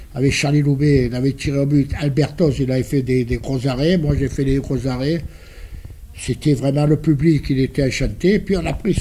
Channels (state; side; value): identical; both; correlation 1.00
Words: Charlie Loubet, il avait tiré au but. Albertos, il avait fait des gros arrêts. Moi, j'ai fait des gros arrêts. C'était vraiment le public, il était enchanté. Puis on a pris